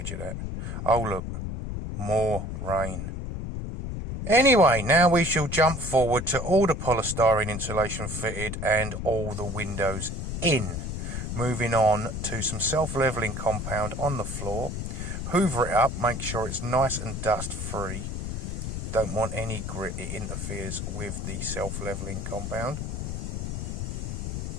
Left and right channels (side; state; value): left; noise; rumble, 5 dB below the sound